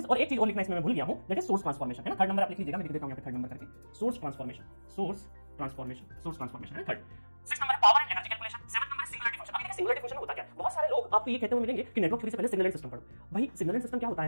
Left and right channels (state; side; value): inverted; both; correlation -1.00